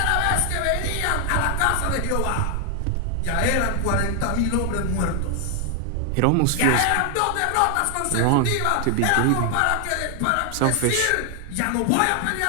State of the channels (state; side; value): different; both; correlation 0.00